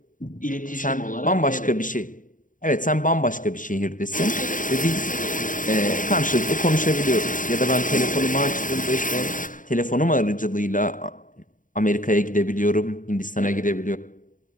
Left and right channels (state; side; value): late; right; 0.38 ms